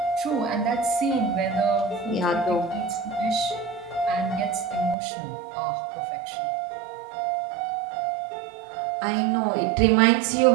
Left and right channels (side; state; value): left; drops out; at 5.0 s